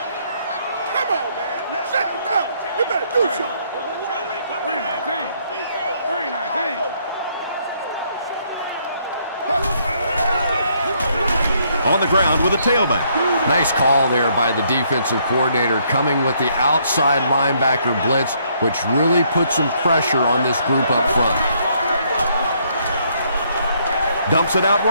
Come on, man. Shut it down. You better do something. 319. On the ground with a tailback. Nice call there by the defensive coordinator, coming with the outside linebacker blitz, which really put some pressure on this group up front. Dumps it out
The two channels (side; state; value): both; inverted; correlation -0.69